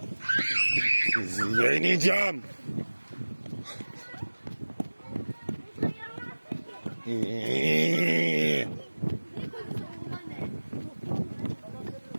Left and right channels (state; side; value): inverted; both; correlation -1.00